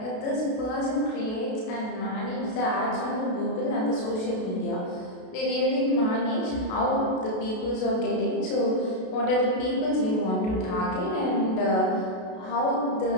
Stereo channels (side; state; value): right; late; 32 ms